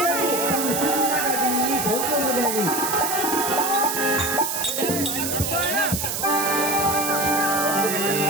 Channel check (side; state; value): right; noise; hiss, 2 dB below the sound